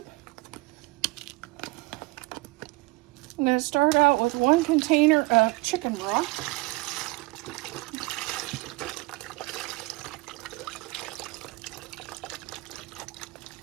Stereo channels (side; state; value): left; quieter; 23.4 dB